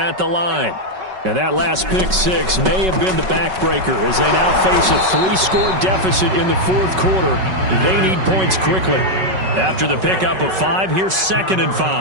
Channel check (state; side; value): late; left; 5.3 ms